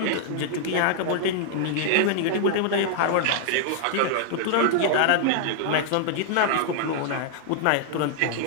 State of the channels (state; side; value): different; both; correlation -0.01